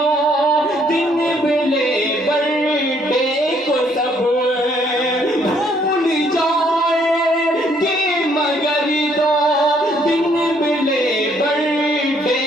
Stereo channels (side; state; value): both; normal; correlation 0.67